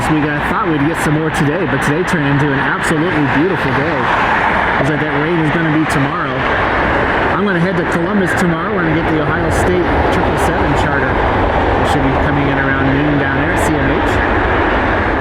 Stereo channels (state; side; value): identical; both; correlation 1.00